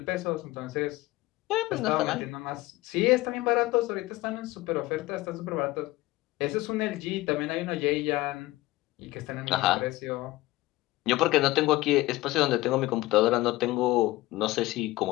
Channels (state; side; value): quieter; right; 18.8 dB